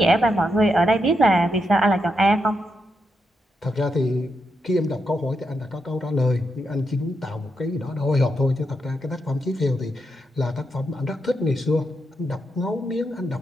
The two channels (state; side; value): normal; both; correlation 0.83